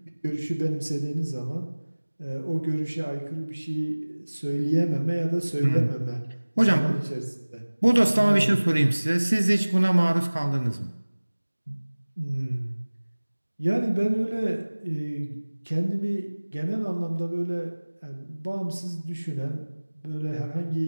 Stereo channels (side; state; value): both; inverted; correlation -1.00